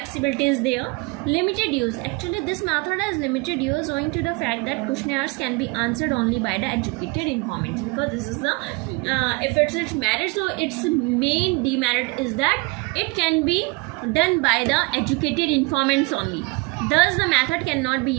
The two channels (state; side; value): quieter; left; 26.8 dB